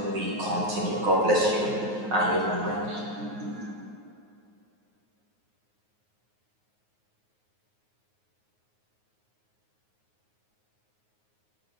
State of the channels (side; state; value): left; late; 9.5 ms